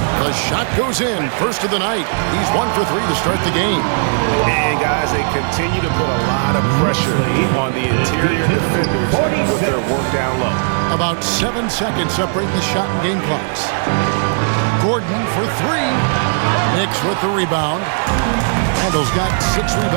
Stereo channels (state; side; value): silent; left; 66 dB below the other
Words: The shot goes in. First of the night. He's 1 for 3 to start the game. And guys, they continue to put a lot of pressure on the interior defenders with their work down low. About 7 seconds separating the shot and game clocks. Gordon for 3. Knicks with the rebound. Randall's got 6